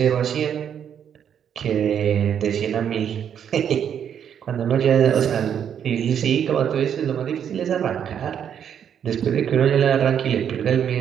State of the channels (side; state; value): left; quieter; 8.6 dB